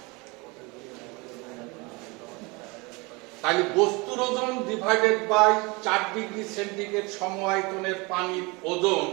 তাহলে বস্তুর ওজন ডিভাইডেড বাই 4 ডিগ্রি সেন্টিগ্রেড সমআয়তনের পানির ওজন,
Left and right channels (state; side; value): quieter; left; 26.5 dB